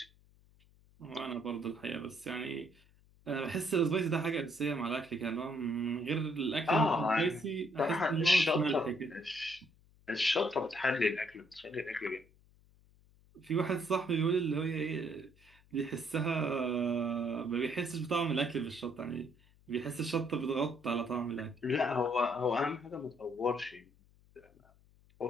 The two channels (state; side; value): noise; left; hum, 29 dB below the sound